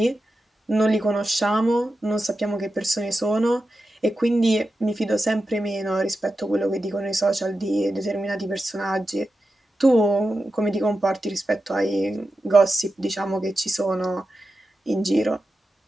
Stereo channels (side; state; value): both; normal; correlation 0.91